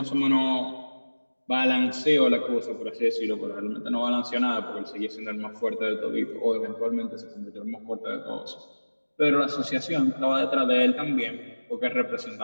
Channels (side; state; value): both; inverted; correlation -1.00